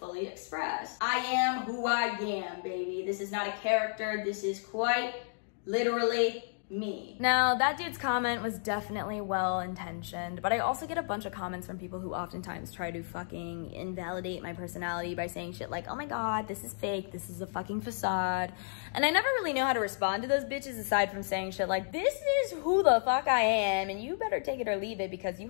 express? I am who I am, baby. This is not a character. This is quite literally me. Now, that dude's comment was definitely well-intentioned, but I also get a bunch of comments from people who oftentimes try to fucking invalidate my personality by saying shit like, oh my god, this is fake, this is a fucking facade. And I never really know how to respond to those bitches aside from saying shit like, this is who the fuck I am, and you better take it or leave it because you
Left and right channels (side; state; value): right; silent; digital silence